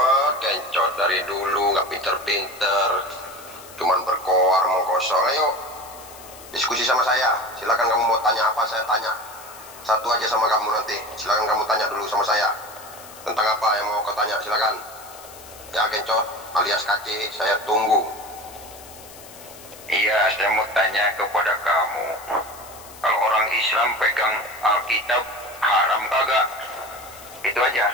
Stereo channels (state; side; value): noise; left; hiss, 19 dB below the sound